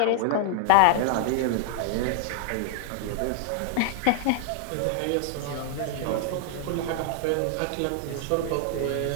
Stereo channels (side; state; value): both; different; correlation 0.00